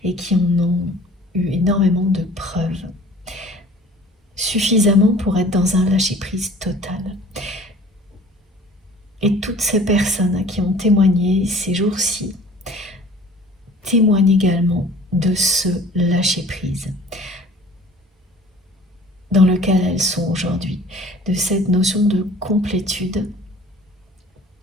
et qui en ont eu énormément de preuves. Suffisamment pour être dans un lâcher-prise total. Et toutes ces personnes qui ont témoigné ces jours-ci témoignent également de ce lâcher-prise dans lequel elles sont aujourd'hui, de cette notion de complétude,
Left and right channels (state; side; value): normal; both; correlation 0.48